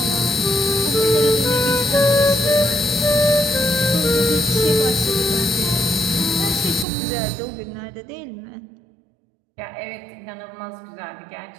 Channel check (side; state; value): left; drops out; at 6.9 s